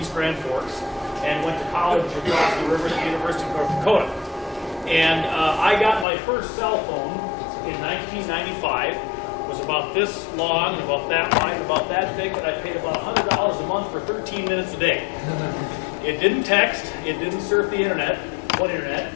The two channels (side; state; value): right; drops out; at 6.1 s